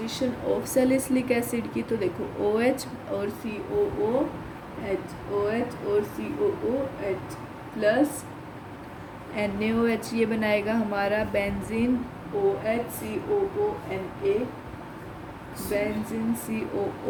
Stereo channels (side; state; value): both; identical; correlation 1.00